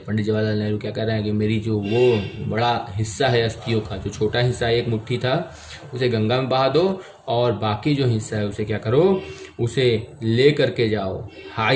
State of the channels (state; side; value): identical; both; correlation 1.00